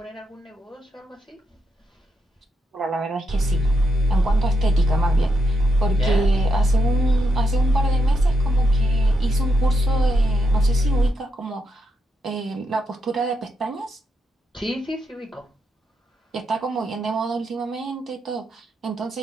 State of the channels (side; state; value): both; normal; correlation 0.82